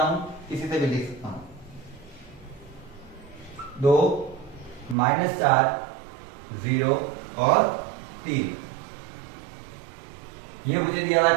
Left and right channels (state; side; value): drops out; left; at 5.0 s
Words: हूं, किसी से भी लिख सकता हूं। 2 -4 0 और 3, ये मुझे दिया हुआ है।